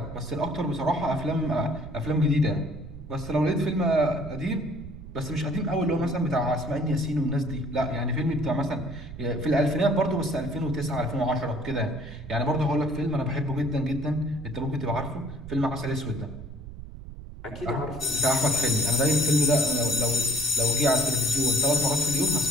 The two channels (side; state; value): right; noise; rumble, 13 dB below the sound